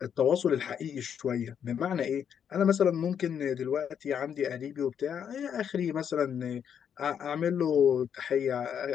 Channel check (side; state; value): right; quieter; 8.2 dB